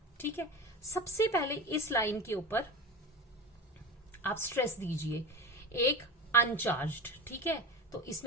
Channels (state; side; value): normal; both; correlation 0.27